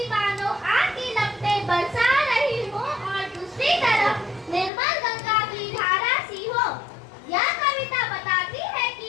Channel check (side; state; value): right; drops out; at 4.7 s